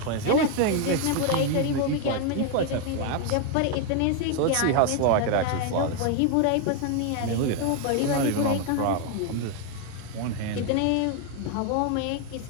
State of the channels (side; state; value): both; different; correlation 0.01